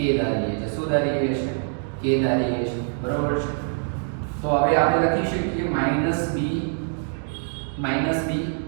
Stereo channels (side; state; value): left; silent; 62 dB below the other